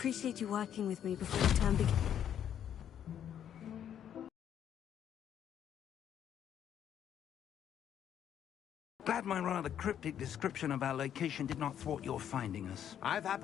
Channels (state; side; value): quieter; right; 9.6 dB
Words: you working with me before the term begins. Glad my rather cryptic description of our location did not thwart your finding us. I've